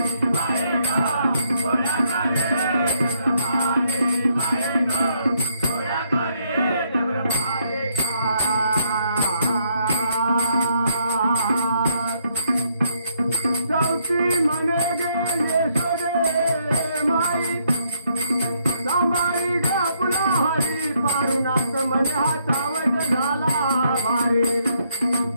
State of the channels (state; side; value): inverted; both; correlation -0.72